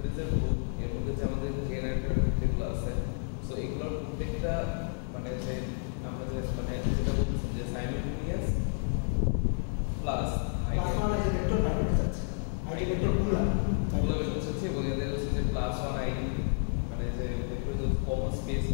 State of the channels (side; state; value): right; silent; digital silence